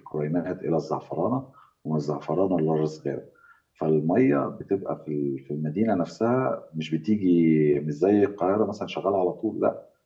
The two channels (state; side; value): identical; both; correlation 1.00